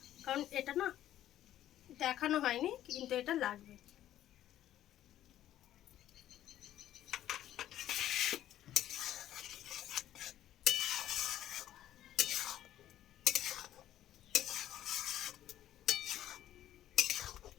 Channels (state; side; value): quieter; right; 12.4 dB